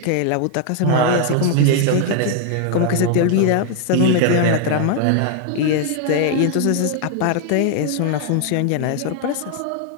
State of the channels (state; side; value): different; both; correlation 0.00